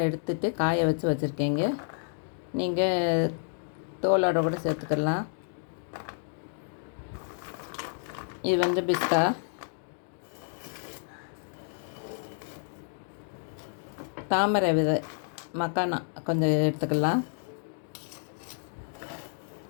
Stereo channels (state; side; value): silent; right; digital silence